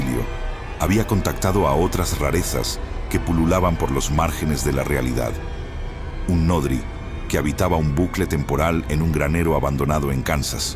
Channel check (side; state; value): both; identical; correlation 1.00